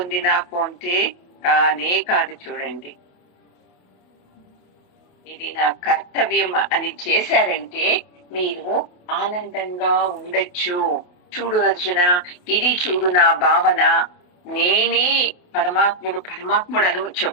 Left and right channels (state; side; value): late; right; 28 ms